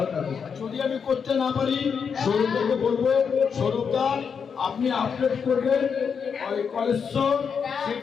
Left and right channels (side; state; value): right; quieter; 6.4 dB